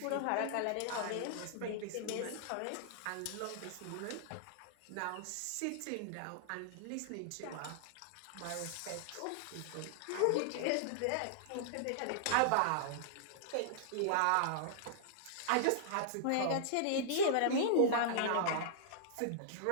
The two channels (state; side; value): different; both; correlation -0.01